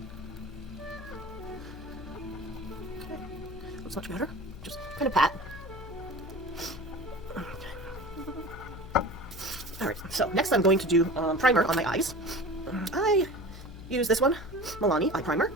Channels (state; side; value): noise; left; hum, 13 dB below the sound